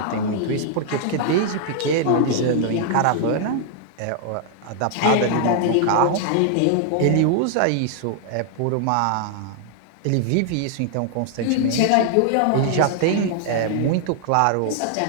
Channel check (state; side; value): different; both; correlation -0.01